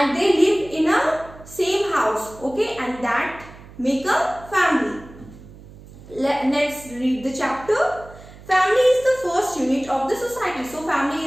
they live in a same house, okay? And that make a family. Let's read the chapter. Family is the first unit of the society. So family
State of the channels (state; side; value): noise; right; hum, 19 dB below the sound